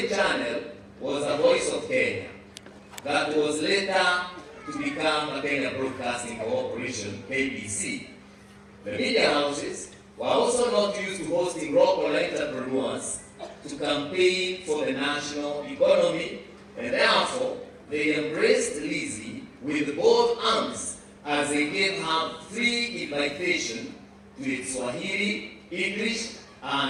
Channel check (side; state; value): both; identical; correlation 1.00